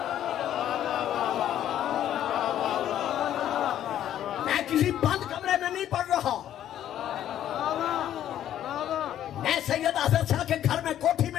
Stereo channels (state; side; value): quieter; right; 11.3 dB